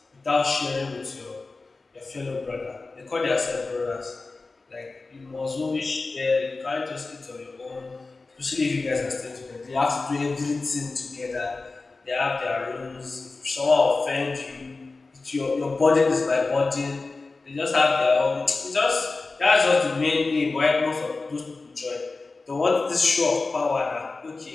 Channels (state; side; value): quieter; right; 3.7 dB